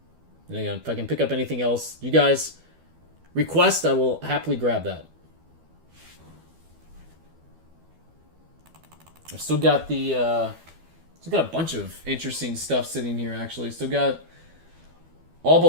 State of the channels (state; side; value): late; left; 12 ms